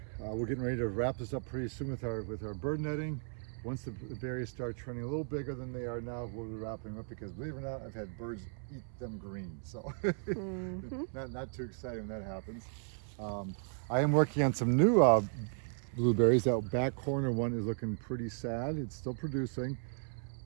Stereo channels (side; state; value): left; silent; 54 dB below the other